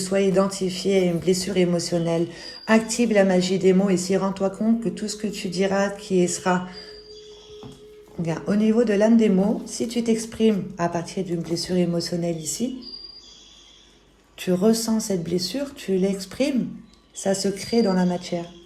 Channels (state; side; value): identical; both; correlation 1.00